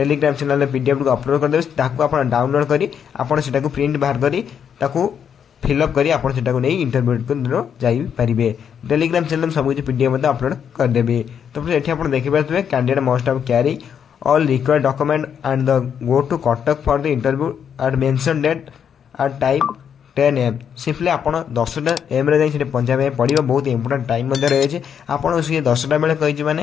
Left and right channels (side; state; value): right; quieter; 8.0 dB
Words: चैनल पीडीएफ को अपलोड करदेवे। आप डाउनलोड कर प्रिंट बाहर कर फिलअप करी आप नहीं इंटरव्यू को जाइए। टेलीग्राम चैनल सब किसी पीडीएफ अपलोड करदेवी। तो फ्रेंड्स ये आप देखिए candidate must have carry all required document and the go to Kotak for the interview at mentioned date at time 10 AM। Simply आपड़ 10टा AM रे जाई पहुँचा पड़ो। बहुत इंपोर्टेंट टाइम रही आपड़ सी 10टा बेले कही